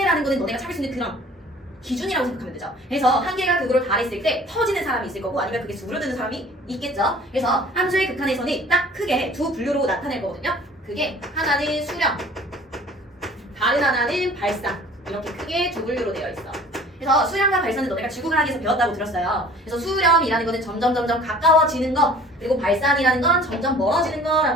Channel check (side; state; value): both; normal; correlation 0.49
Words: 거는 너네가 찾을 수 있는 그런 기준이라고 생각하면 되죠. 그래서 한계가 극으로 달했을 때 터지는 사람이 있을 거고 아니면 그게 수그러드는 사람이 있겠죠. 그래서 함수의 극한에서는 딱 크게 두 분류로 나타낼 거거든요. 그게 하나는 수렴, 다른 하나는 발산. 이렇게 크게 두 분류로 되어 있어. 그래서 수렴과 발산은 너네가 지구과학에서 배웠다고 들었어요. 그래서 수렴이라는 거는 점점 가까워지는 거, 그리고 발산이라는 건 점점 멀어지는